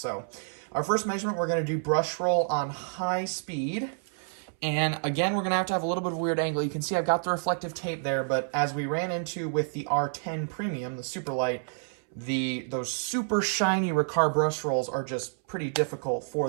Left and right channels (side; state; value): left; silent; 59 dB below the other